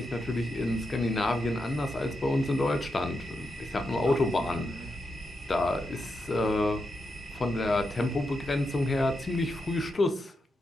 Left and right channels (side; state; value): both; normal; correlation 0.85